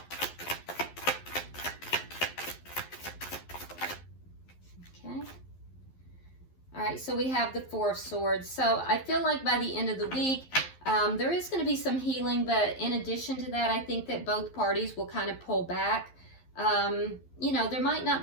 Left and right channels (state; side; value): late; right; 11 ms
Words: Okay. All right, so we have the Four of Swords. So I feel like by the end of the week, there is going to be some healing, but in addition to that, I think that both parties will kind of pull back. You know, there might